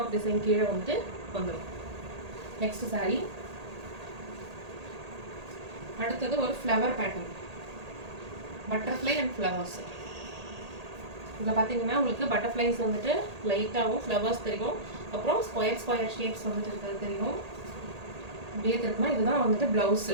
டிசைன் கீழே வந்துட்டு வந்துடும். நெக்ஸ்ட் சாரீ. அடுத்தது ஒரு flower pattern, butterfly and flowers. இதில் பார்த்தீங்கன்னா உங்களுக்கு பட்டர்ஃப்ளைஸ் வந்துட்டு லைட்டாகவும் ஃப்ளவர்ஸ் தெரியும். அப்புறம் ஸ்கொயர் ஷேப்ஸ் வந்துட்டு இருக்கிறது தெரியும். அப்படியே இருக்குன்னா இதுதான் வந்துட்டு ப்ளவுஸ்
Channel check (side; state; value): left; late; 1.8 ms